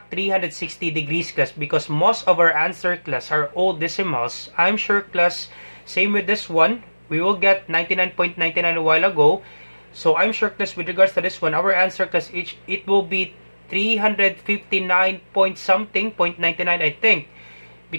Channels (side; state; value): both; inverted; correlation -1.00